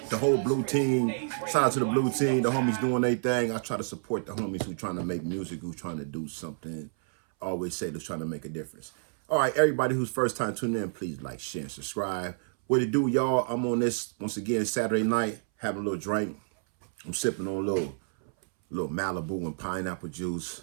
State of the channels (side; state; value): left; silent; 58 dB below the other